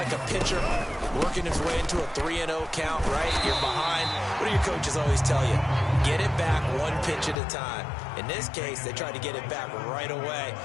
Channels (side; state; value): right; drops out; at 7.4 s